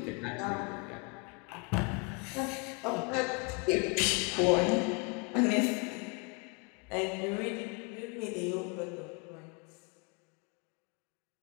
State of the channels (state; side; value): quieter; right; 32.4 dB